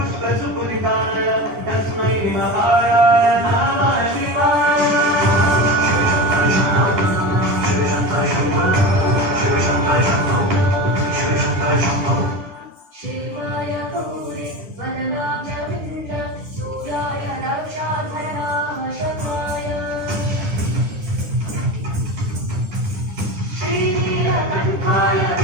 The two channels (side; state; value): left; late; 10 ms